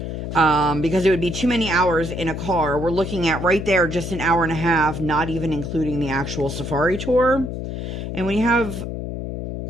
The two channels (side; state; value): left; noise; hum, 5 dB below the sound